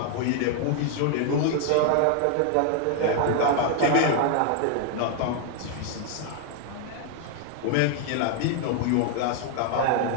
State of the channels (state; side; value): different; both; correlation 0.00